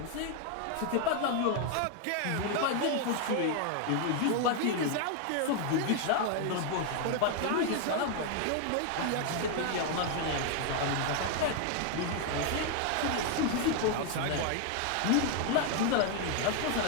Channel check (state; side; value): different; both; correlation 0.00